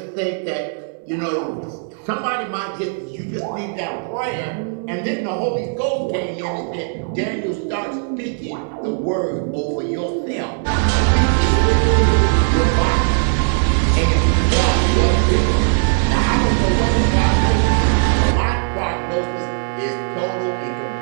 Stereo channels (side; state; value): left; silent; 65 dB below the other